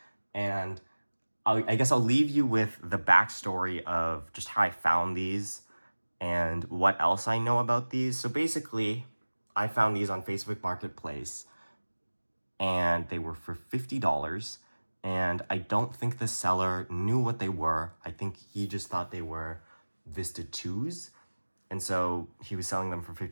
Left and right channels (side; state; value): both; inverted; correlation -1.00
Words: And I guess I'll leave you with the backstory of just how I found these and what else I know about these. So basically, I found these on Facebook Marketplace, and they were for $50. And I don't think the seller knew what they were. I think he just thought they were Vista 2s. And so he was selling them for